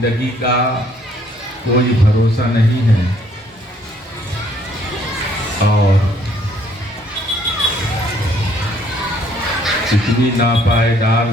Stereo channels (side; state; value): both; normal; correlation 0.64